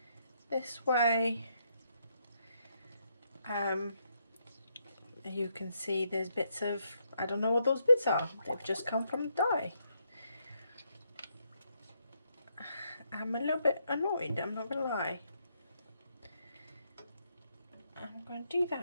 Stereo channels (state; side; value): inverted; both; correlation -0.76